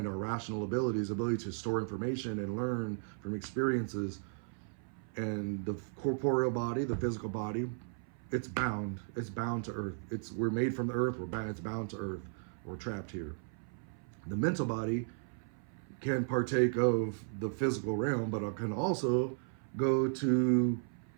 our rational abilities, ability to store information and learn from experiences. And the corporeal body, the physical body, it's bound to earth. We're made from the earth. It's bound to earth. We're trapped here. The mental body can partake of the physical realm, but it can also go to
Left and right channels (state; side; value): silent; left; 54 dB below the other